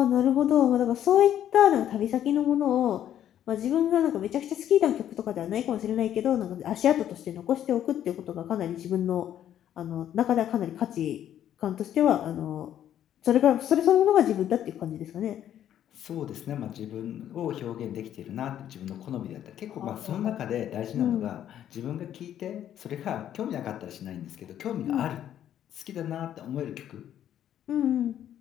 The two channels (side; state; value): right; quieter; 10.8 dB